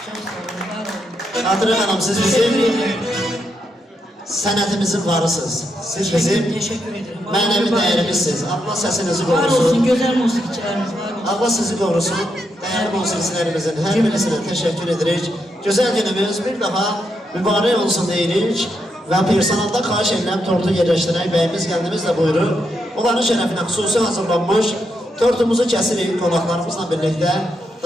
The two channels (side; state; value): both; normal; correlation 0.81